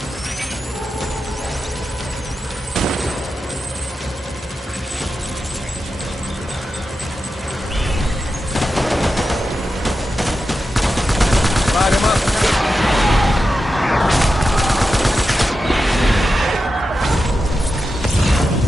Light him up.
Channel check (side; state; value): both; normal; correlation 0.90